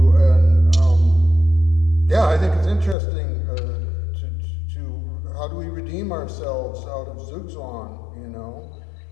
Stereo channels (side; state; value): right; drops out; at 3.0 s